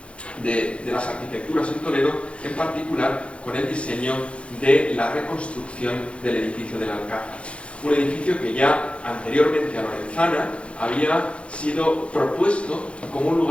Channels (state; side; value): late; right; 0.060 ms